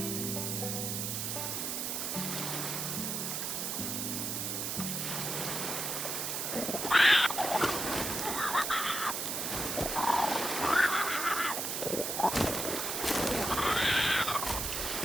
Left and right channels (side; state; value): right; noise; hiss, 2 dB below the sound